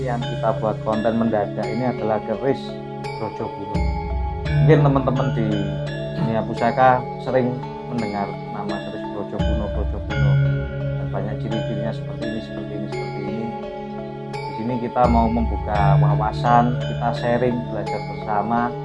yang kita buat konten mendadak ini adalah keris Brojokuno. Mungkin teman-teman di dunia pusaka sering mendengar nama keris Brojokuno dan banyak ciri-cirinya seperti ini. Di sini kita mau membuka wawasan, kita sharing, belajar bersama,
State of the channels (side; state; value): both; identical; correlation 1.00